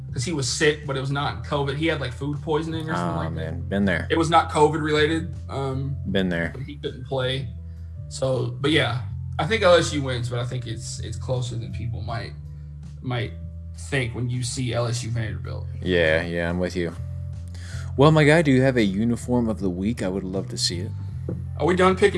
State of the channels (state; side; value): identical; both; correlation 1.00